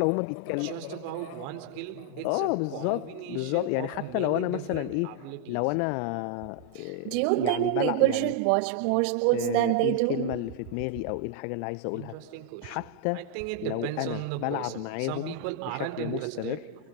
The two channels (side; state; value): both; different; correlation 0.00